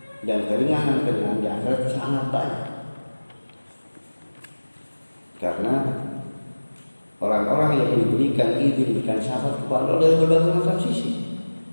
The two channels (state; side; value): inverted; both; correlation -1.00